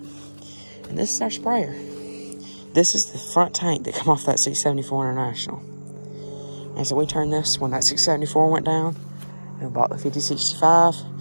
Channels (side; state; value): both; inverted; correlation -1.00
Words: And this is our sprayer. This is the front tank that come off that 674 International. And so we turned this when that 674 went down. We bought the 5065.